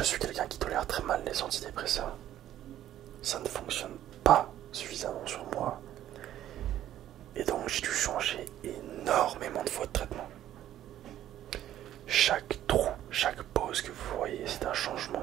suis quelqu'un qui tolère très mal les antidépresseurs. Ça ne fonctionne pas suffisamment sur moi. Et donc j'ai dû changer énormément de fois de traitement. Chaque trou, chaque pause que vous voyez, c'est un changement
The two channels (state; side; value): quieter; left; 12.2 dB